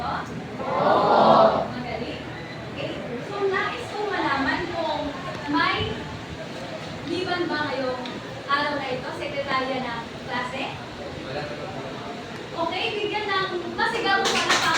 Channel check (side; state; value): both; identical; correlation 1.00